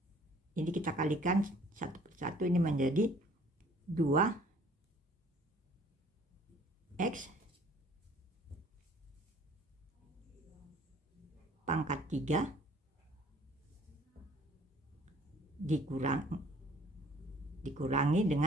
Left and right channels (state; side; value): normal; both; correlation 0.55